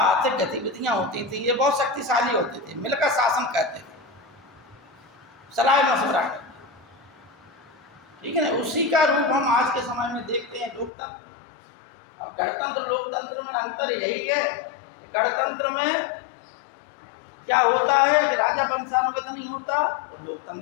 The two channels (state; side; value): drops out; right; at 10.9 s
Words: आर्थिक गतिविधियां होती थी, ये बहुत शक्तिशाली होते थे, मिलकर शासन करते थे, सलाह मशवरा करते, ठीक है ना? उसी का रूप हम आज के समय में देखते हैं, लोकतंत्र। अब गणतंत्र लोकतंत्र में अंतर यही है कि गणतंत्र में क्या होता है कि राजा वंशानुगत नहीं होता, और